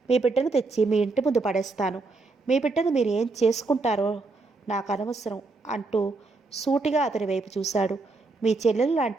మీ బిడ్డను తెచ్చి మీ ఇంటి ముందు పడేస్తాను. మీ బిడ్డను మీరు ఏం చేసుకుంటారో నాకు అనవసరం అంటూ సూటిగా అతని వైపు చూశాడు. మీ చెల్లెలు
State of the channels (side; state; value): left; quieter; 3.7 dB